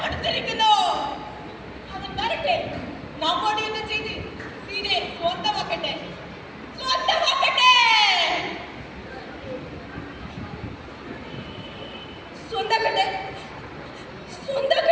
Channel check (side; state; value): both; identical; correlation 1.00